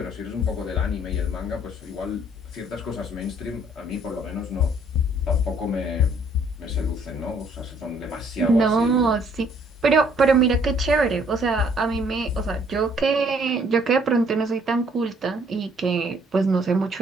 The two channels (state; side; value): normal; both; correlation 0.63